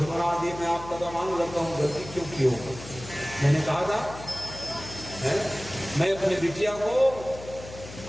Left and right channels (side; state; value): left; noise; hum, 14 dB below the sound